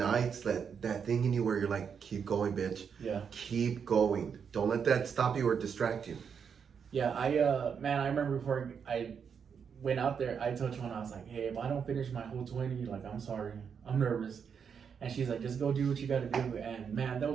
that thing in you where you're like, keep going, bitch. Yeah. Keep going. Don't let that stop you or distract you. Yeah, I remember before I went out there, I told Chona, I was like, hey, if I don't finish my whole 20, like, I'm sorry. I'm nervous. And she's like, just go do what you got to do. And man, that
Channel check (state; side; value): quieter; left; 6.8 dB